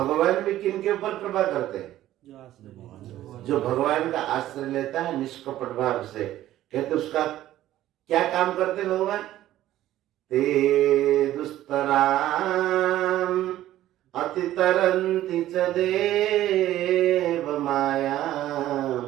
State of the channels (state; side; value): quieter; left; 13.8 dB